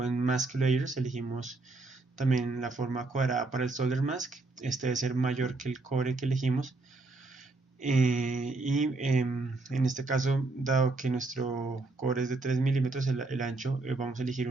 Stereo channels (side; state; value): left; quieter; 3.3 dB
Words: en Mask Layers elegimos también la forma cuadrada para el solder mask. Este debe ser mayor que el cobre que elegimos. En este caso, dado que nuestro cobre es de 3 milímetros el ancho, vamos a elegir